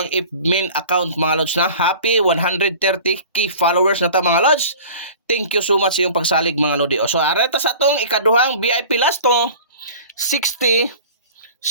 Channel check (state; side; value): inverted; both; correlation -0.42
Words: admin account mga lods na. Happy 130k followers na ta mga lods. Thank you so much sa iyong pagsalig mga lodi. So areta sa atong ikaduhang VIP last to